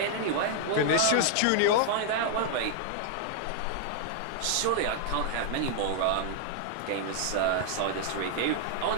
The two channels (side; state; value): both; different; correlation 0.00